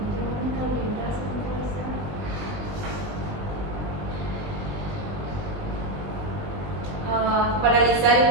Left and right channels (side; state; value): left; late; 20 ms